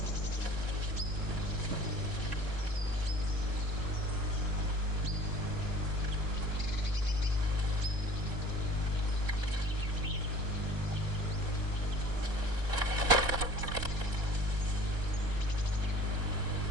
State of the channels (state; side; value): late; left; 1.1 ms